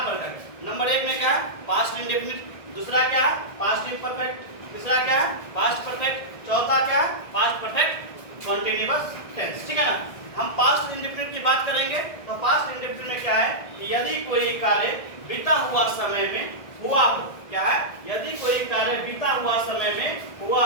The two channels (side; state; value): right; late; 1.7 ms